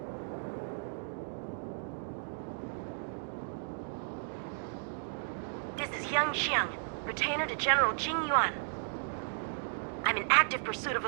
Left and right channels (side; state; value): left; silent; digital silence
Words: Xiang, retainer to General Jing Yuan. I'm in active pursuit of